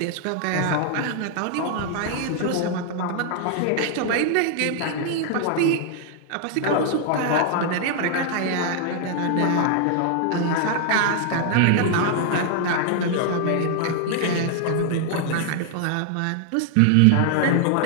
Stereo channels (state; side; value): different; both; correlation 0.00